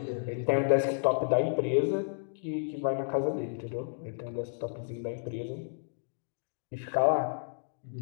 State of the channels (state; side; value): silent; right; digital silence